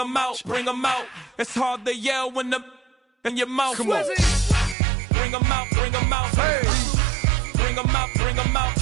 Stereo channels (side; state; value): left; drops out; at 4.8 s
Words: out, bring 'em out. It's hard to yell when the in your mouth. Come on. Bring 'em out, bring 'em out. Hey. Bring 'em out, bring 'em out.